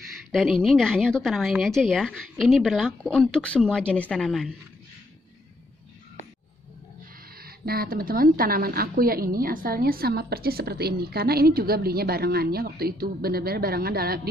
Dan ini nggak hanya untuk tanaman ini aja ya. Ini berlaku untuk semua jenis tanaman. Nah teman-teman, tanaman aku yang ini asalnya sama persis seperti ini, karena ini juga belinya barengannya waktu itu, benar-benar barengan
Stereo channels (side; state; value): both; normal; correlation 0.73